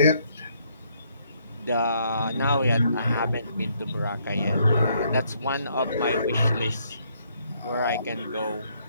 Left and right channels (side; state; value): both; inverted; correlation -0.70